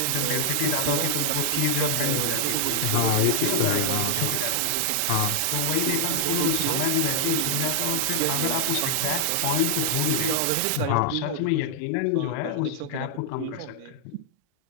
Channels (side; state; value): both; different; correlation -0.01